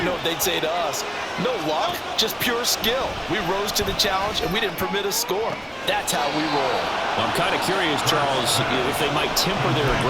know what they'd say to us. No luck, just pure skill. We rose to the challenge, and we didn't permit a score. That's how we roll. Well, I'm kind of curious, Charles, if they might temper their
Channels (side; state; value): both; identical; correlation 1.00